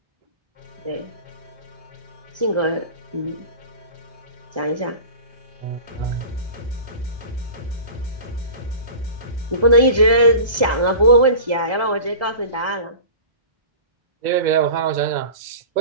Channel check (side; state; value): left; late; 1.7 ms